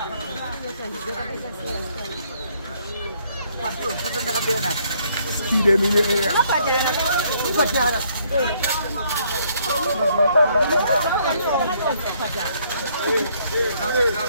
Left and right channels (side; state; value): both; inverted; correlation -0.67